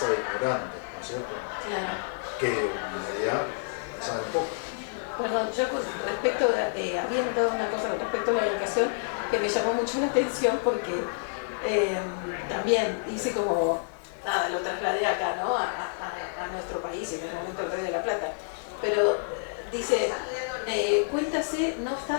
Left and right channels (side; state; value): right; silent; digital silence